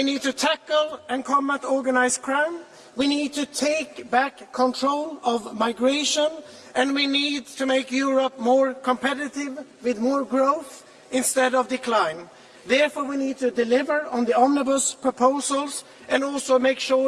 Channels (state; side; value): identical; both; correlation 1.00